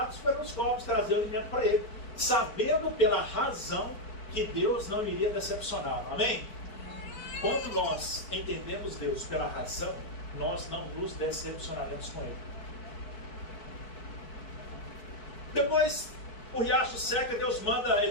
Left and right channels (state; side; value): late; right; 4.2 ms